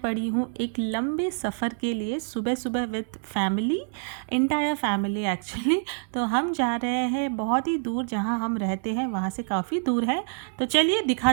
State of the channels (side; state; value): left; silent; 61 dB below the other